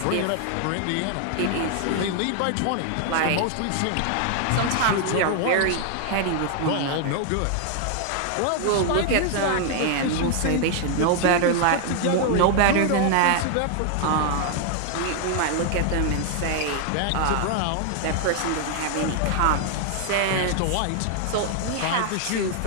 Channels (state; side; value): different; both; correlation 0.00